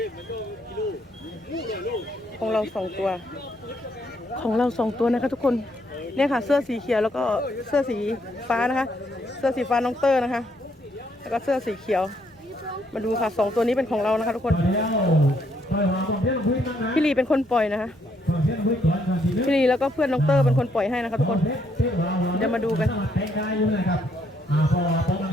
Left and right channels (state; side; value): normal; both; correlation 0.72